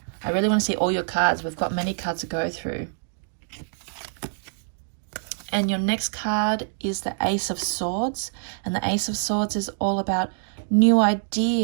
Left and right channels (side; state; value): left; silent; digital silence